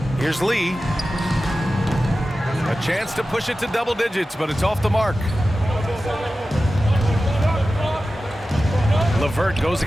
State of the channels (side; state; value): both; normal; correlation 0.94